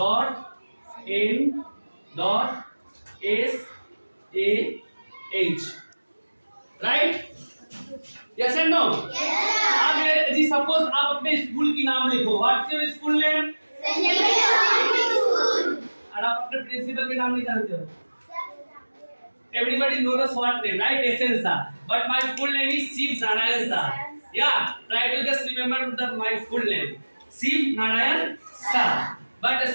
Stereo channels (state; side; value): inverted; both; correlation -1.00